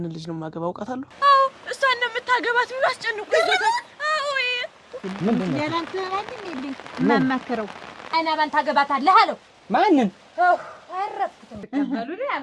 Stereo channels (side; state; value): both; identical; correlation 1.00